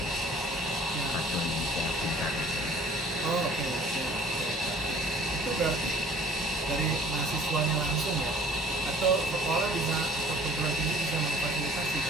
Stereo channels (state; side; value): normal; both; correlation 0.52